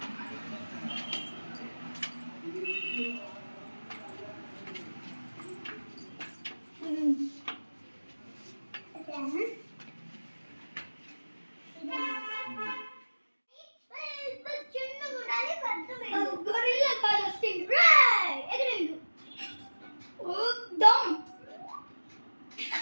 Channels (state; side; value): inverted; both; correlation -1.00